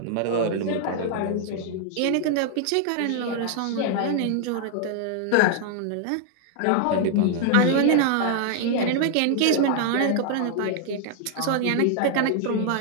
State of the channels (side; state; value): both; different; correlation 0.00